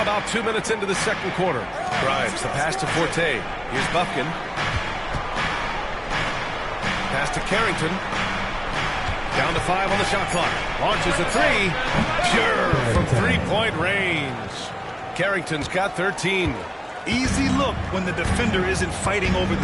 about 2 minutes into the second quarter. Grimes, the pass to Forte. Here's Bufkin. Pass to Carrington. Down to 5 on the shot clock. Launches a three. Pure from three-point range. Carrington's got 13. Easy look when the defender isn't fighting over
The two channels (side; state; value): both; identical; correlation 1.00